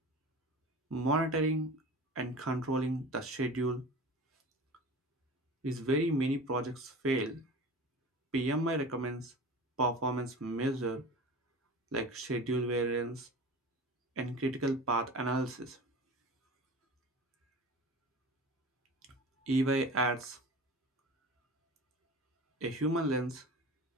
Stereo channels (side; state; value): both; normal; correlation 0.36